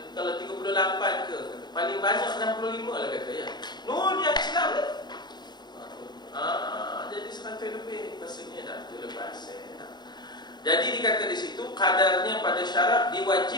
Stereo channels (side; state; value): right; late; 0.21 ms